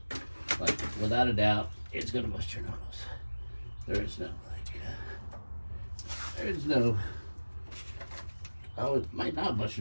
Like, without a doubt, it's gonna bust your knuckles. There is no Oh, it might not bust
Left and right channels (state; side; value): inverted; both; correlation -1.00